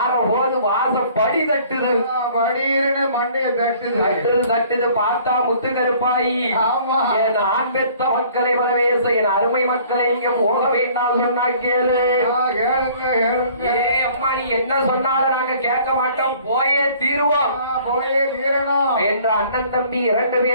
வாசப்படி தட்டுது. படின்னு மண்டைய தட்டுது. தட்டுது பார்த்தா முத்து கருப்பாயி. ஆமா. என் ஆண் பெத்த மக்களை வரவேச என் அருமை மக்களை இங்க போக வேண்டாம் சொன்னா கேளு. கேளுங்க கேளுங்க. ஏ அம்மா நீ என்ன சொன்னாலும் நாங்க கேட்க மாட்டோம், போயே தீருவோம், போயே தீரணும் என்ற அண்ணன் தம்பி 2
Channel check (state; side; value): inverted; both; correlation -0.54